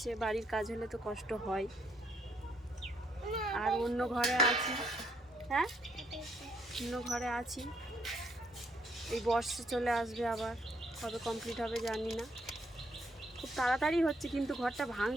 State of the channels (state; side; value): normal; both; correlation 0.72